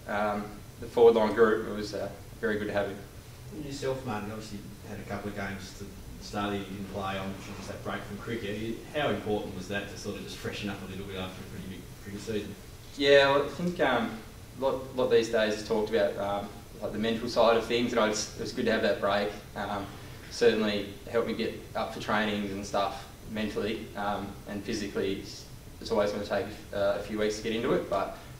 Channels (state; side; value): identical; both; correlation 1.00